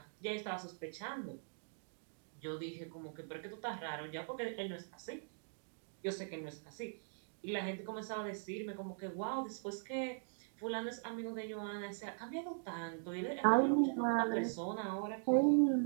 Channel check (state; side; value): silent; left; digital silence